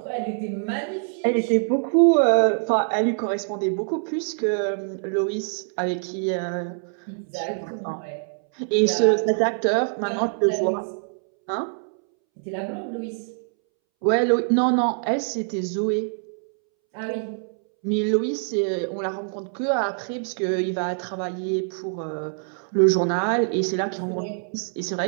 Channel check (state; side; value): silent; left; 62 dB below the other